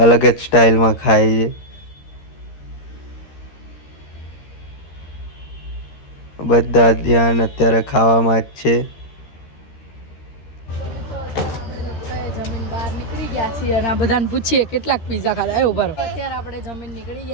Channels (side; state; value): right; late; 13 ms